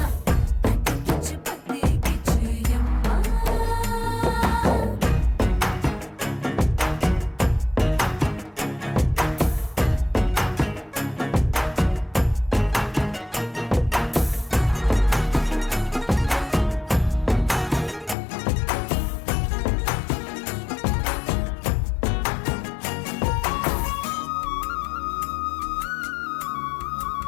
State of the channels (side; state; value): right; drops out; at 18.2 s